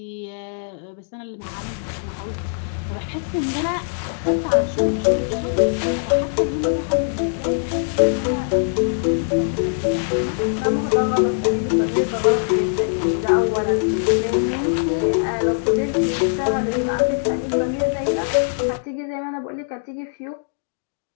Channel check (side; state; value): right; silent; digital silence